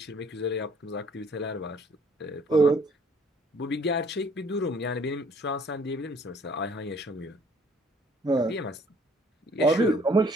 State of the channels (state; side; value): normal; both; correlation 0.60